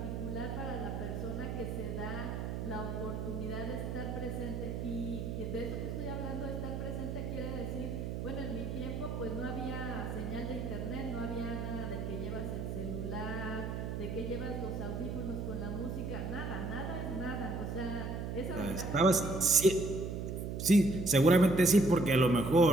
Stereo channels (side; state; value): right; noise; hum, 4 dB below the sound